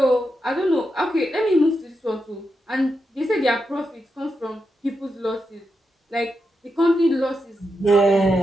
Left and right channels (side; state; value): both; normal; correlation 0.86